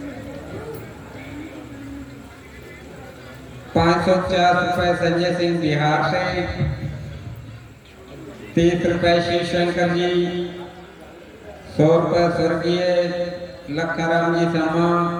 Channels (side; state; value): both; identical; correlation 1.00